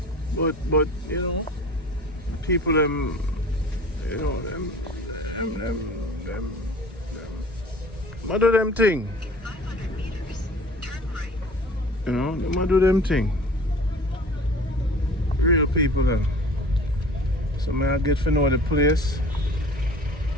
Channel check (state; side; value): normal; both; correlation 0.44